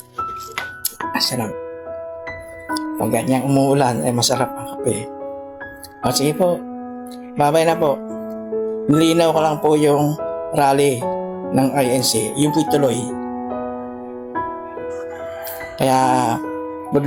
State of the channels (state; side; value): identical; both; correlation 1.00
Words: Sarap. Pag ganyang umuulan ay masarap ang kape. Sige po. Bye-bye na po. Nilinaw ko lang po yung rally ng INC. Yung po'y tuloy. Kaya